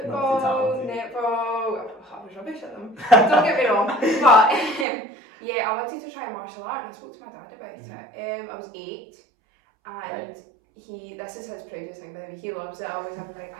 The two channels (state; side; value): drops out; left; at 4.9 s